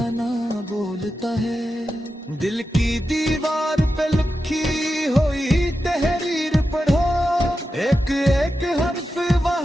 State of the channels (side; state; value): both; normal; correlation 0.90